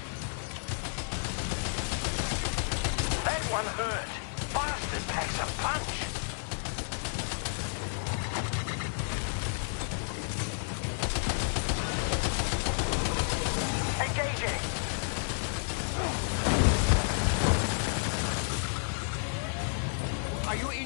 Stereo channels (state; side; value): silent; right; digital silence